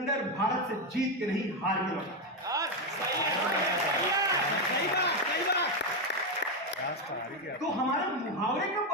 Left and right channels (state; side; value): normal; both; correlation 0.07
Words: भारत से जीत के नहीं, हार के लौटा। तो हमारे मुहावरे कब